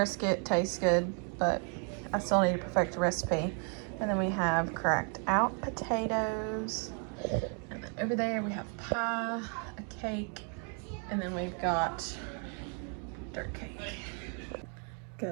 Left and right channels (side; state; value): left; quieter; 39.8 dB